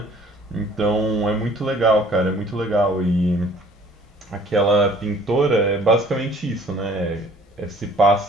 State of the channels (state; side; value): normal; both; correlation 0.54